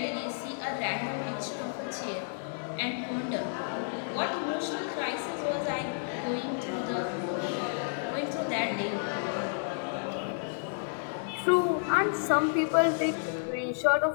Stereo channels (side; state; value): right; silent; digital silence